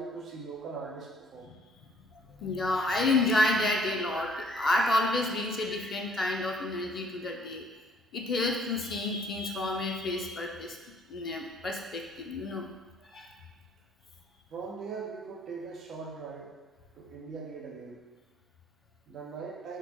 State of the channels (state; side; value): normal; both; correlation 0.61